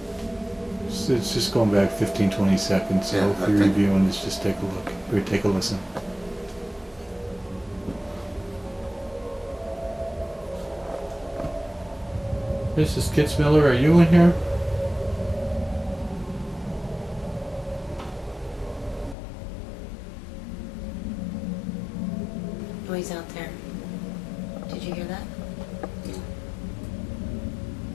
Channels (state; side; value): drops out; right; at 19.2 s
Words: It's just going back 15, 20 seconds. So Yeah, if I you're think- reviewing this, just take a look or take a listen. Mrs. Kitzmiller, are you in here? Noise out there. Did you hear that?